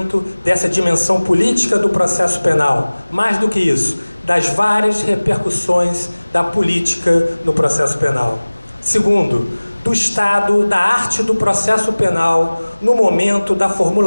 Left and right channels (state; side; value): inverted; both; correlation -1.00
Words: dessa dimensão política do processo penal. Mais do que isso, das várias repercussões da política no processo penal. Segundo, do estado da arte do processo penal no momento da